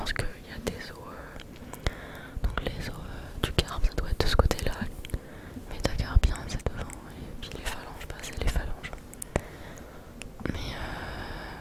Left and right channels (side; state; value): both; identical; correlation 1.00